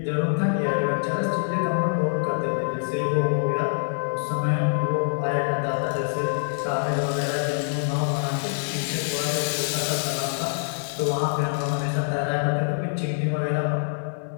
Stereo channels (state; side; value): silent; right; digital silence